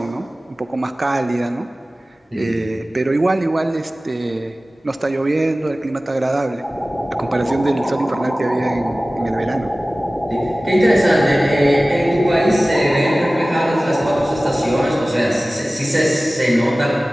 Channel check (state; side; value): normal; both; correlation 0.97